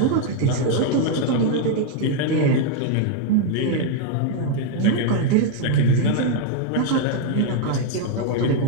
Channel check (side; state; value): both; different; correlation 0.00